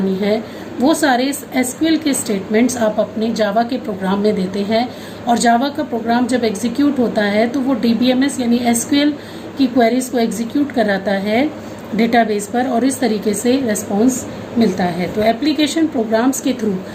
है, वो सारे SQL के स्टेटमेंट्स आप अपने जावा के प्रोग्राम में देते हैं। और जावा का प्रोग्राम जब एग्जीक्यूट होता है तो वो DBMS यानी SQL की क्वेरीज को एग्जीक्यूट कराता है डेटाबेस पर और इस तरीके से रेस्पॉन्स मिलता है। तो एप्लीकेशन प्रोग्राम्स के थ्रू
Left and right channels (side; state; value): both; identical; correlation 1.00